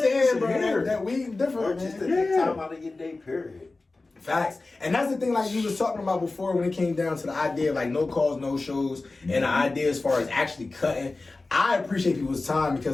bro. Here. That weed different, Just to man. take time out of your day, period. Facts. And that's the thing, like you was talking about before, when it came down to the idea of like no calls, no shows, and the idea as far as actually cutting. I appreciate people's time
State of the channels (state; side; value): quieter; right; 3.4 dB